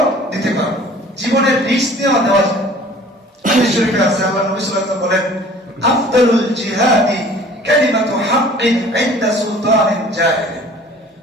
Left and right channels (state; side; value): normal; both; correlation 0.49